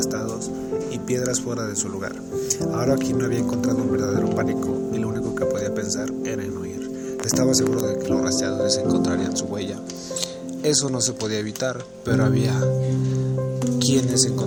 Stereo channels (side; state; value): both; identical; correlation 1.00